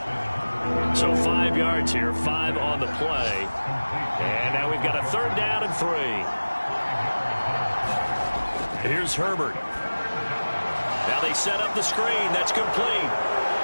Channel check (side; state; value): both; inverted; correlation -1.00